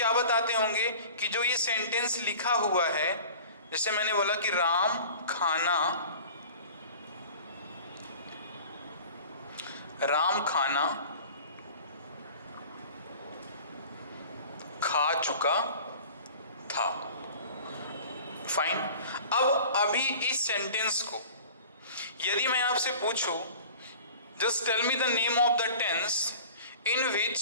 बताते होंगे कि जो ये सेंटेंस लिखा हुआ है, जैसे मैंने बोला कि राम खाना खा चुका था। फाइन, अब अभी इस सेंटेंस को यदि मैं आपसे पूछूं, just tell me the name of the tense in which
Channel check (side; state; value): both; inverted; correlation -0.42